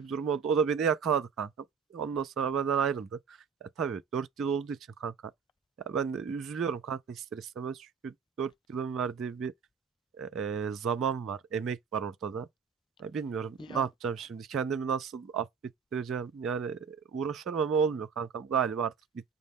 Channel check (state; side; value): quieter; left; 6.4 dB